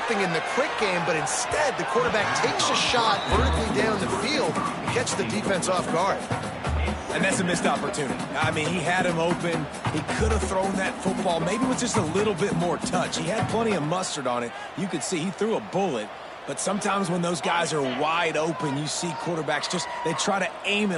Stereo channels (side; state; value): both; identical; correlation 1.00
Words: in the quick game, but instead the quarterback takes a shot vertically down the field and catches the defense off guard. And that's a missed opportunity. I mean, he had him open. He could have thrown that football maybe with just a little bit more touch. He had plenty of mustard on it. You could see he threw a bullet. But sometimes when those guys are wide open, you see quarterbacks they try to aim